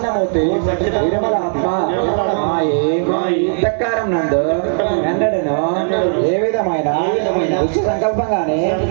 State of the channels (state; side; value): silent; left; 68 dB below the other